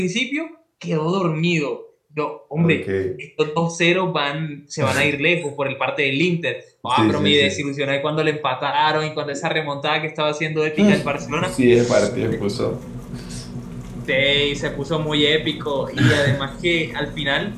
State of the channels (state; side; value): identical; both; correlation 1.00